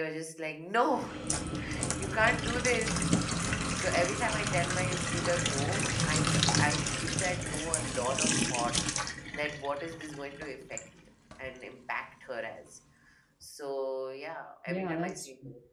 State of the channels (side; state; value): both; identical; correlation 1.00